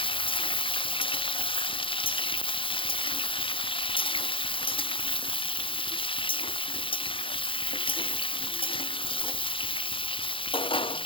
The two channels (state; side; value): late; right; 0.25 ms